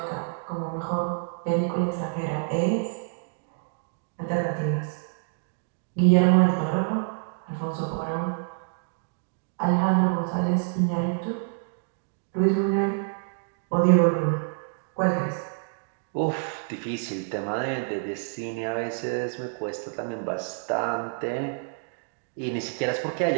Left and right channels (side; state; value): left; silent; digital silence